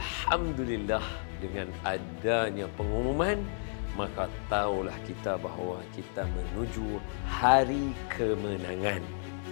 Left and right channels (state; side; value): silent; right; 56 dB below the other